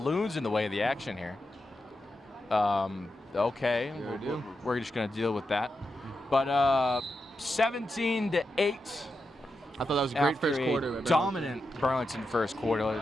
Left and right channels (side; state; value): both; normal; correlation 0.88